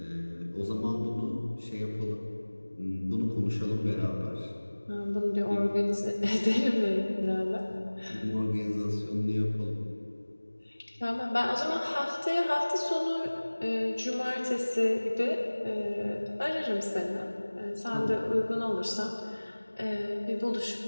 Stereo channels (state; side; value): inverted; both; correlation -1.00